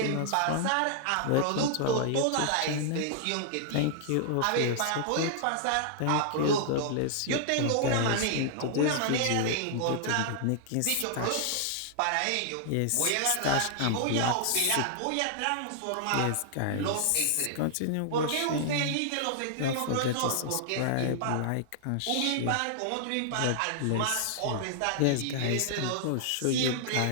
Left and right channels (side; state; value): both; different; correlation -0.01